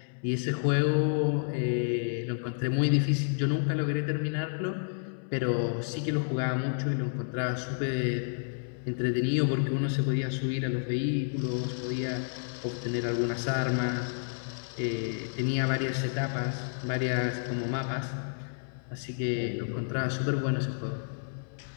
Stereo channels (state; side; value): silent; right; 58 dB below the other